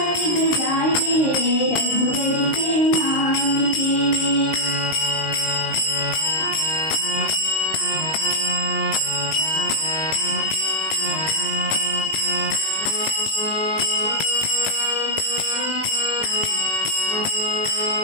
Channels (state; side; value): late; right; 19 ms